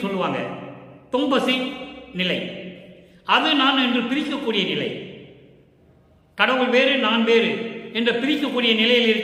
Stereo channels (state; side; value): identical; both; correlation 1.00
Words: சொல்லுவாங்க. தொம்பசி நிலை, அது நான் என்று பிரிக்கக்கூடிய நிலை. கடவுள் வேறு நான் வேறு என்று பிரிக்கக்கூடிய நிலையில்